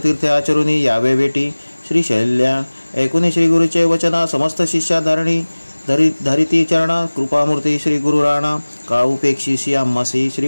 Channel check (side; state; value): both; inverted; correlation -1.00